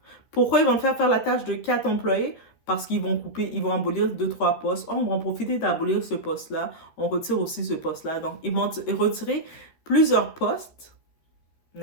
Pourquoi ils vont te faire la tâche de 4 employés? Parce qu'ils vont couper, ils vont abolir 2-3 postes. Oh, on va en profiter d'abolir ce poste-là. On retire aussi ce poste-là. Donc, ils vont retirer plusieurs postes,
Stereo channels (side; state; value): right; late; 13 ms